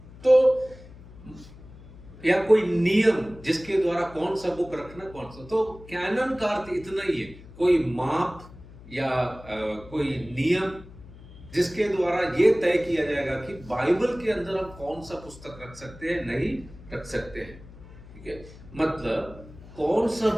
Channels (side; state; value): left; noise; hum, 19 dB below the sound